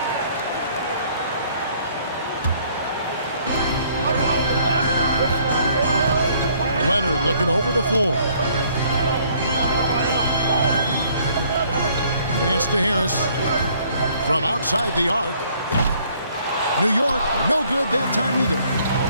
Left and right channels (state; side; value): inverted; both; correlation -0.62